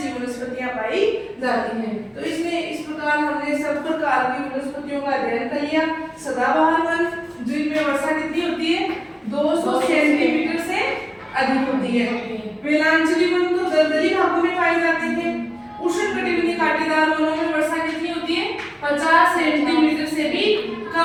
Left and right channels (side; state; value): both; identical; correlation 1.00